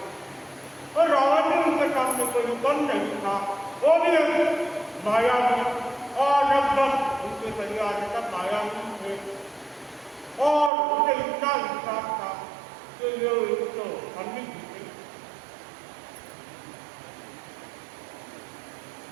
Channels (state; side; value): drops out; left; at 10.7 s